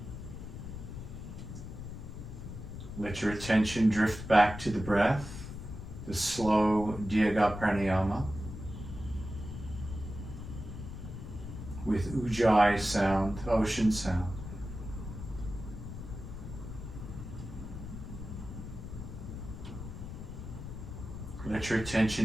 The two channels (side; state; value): left; noise; rumble, 9 dB below the sound